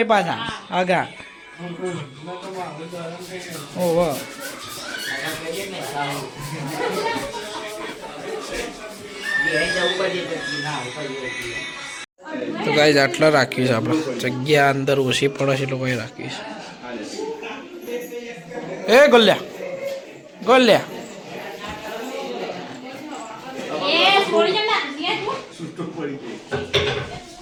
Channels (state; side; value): identical; both; correlation 1.00